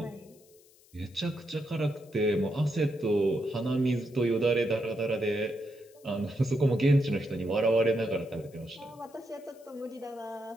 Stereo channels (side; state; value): left; noise; hiss, 28 dB below the sound